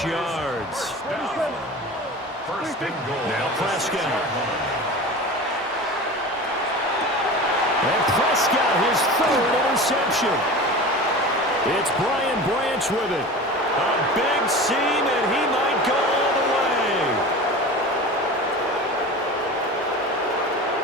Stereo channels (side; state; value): both; normal; correlation 0.33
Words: yards. First and goal. Now Prescott. And Prescott, his 3rd interception. It's Brian Branch with it. A big seam, and he might go all the way.